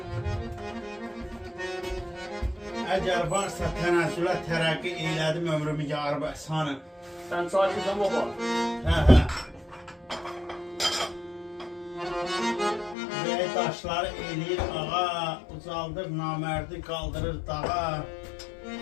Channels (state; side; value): drops out; right; at 13.0 s